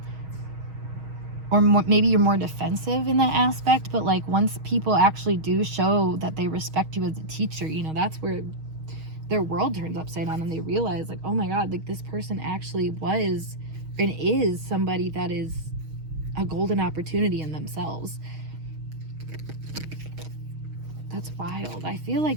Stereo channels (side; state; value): left; late; 6.4 ms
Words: Or maybe you're more defensive in that aspect, but like once people actually do show that they respect you as a teacher, that's where their world turns upside down, and they realize like, oh my God, like this person actually was and is somebody that is a golden opportunity in themselves. That's wild. I feel